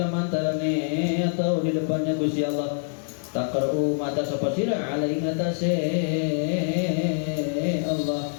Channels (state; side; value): silent; right; digital silence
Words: antarane atau di depannya Gusti Allah. Taqra'u mata sapa sira alai ngatase Allah